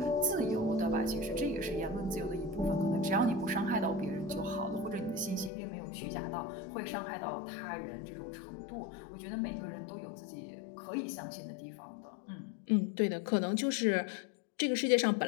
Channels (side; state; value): right; drops out; at 5.5 s